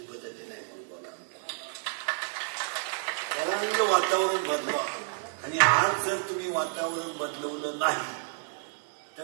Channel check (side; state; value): left; silent; 58 dB below the other